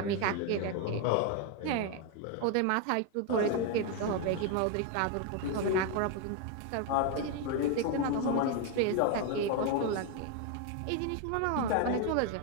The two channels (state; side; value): different; both; correlation 0.01